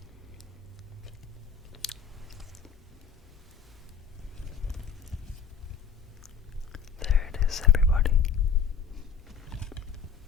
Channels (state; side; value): quieter; right; 6.6 dB